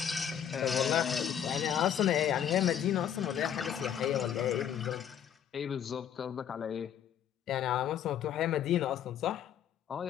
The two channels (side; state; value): right; quieter; 9.4 dB